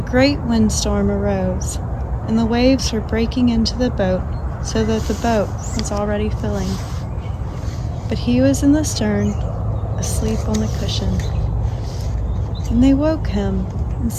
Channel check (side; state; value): both; identical; correlation 1.00